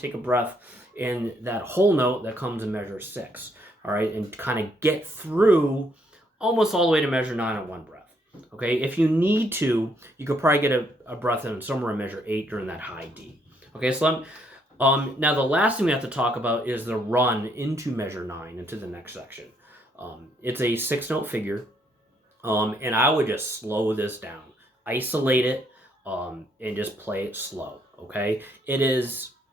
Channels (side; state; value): both; normal; correlation 0.71